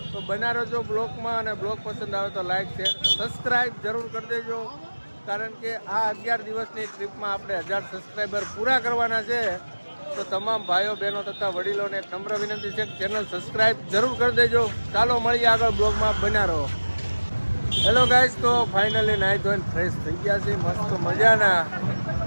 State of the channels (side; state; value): both; inverted; correlation -1.00